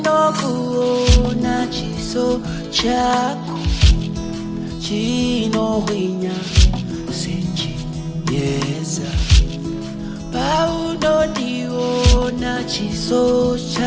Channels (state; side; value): identical; both; correlation 1.00